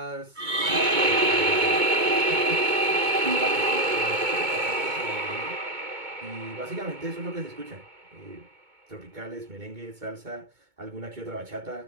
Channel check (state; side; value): late; left; 2.2 ms